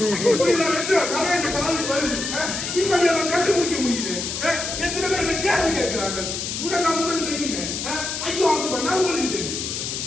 இப்படி கதை இந்த காலேஜ் வருது, இப்படி அவன் கண்டுபிடிக்க முடியுது. எத்தனை பேர் என்ன கேள்வி கேட்கிறார்கள்? முதல் உங்களுக்கு தெரியுமே, ஐயோ அவங்க பண்ணா உங்களுக்கு தெரியும்.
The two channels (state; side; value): noise; left; hiss, 4 dB below the sound